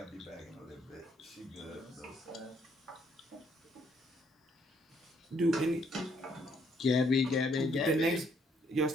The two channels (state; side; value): normal; both; correlation 0.69